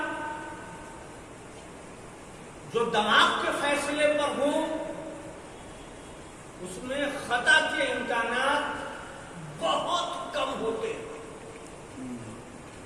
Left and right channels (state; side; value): identical; both; correlation 1.00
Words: جو دماغ کے فیصلے پر ہوں اس میں خطا کے امکانات بہت کم ہوتے ہیں۔